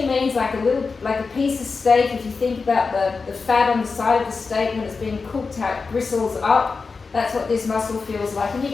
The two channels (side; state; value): right; quieter; 4.6 dB